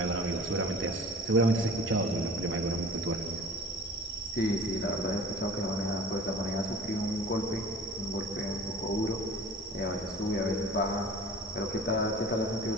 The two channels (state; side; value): normal; both; correlation 0.43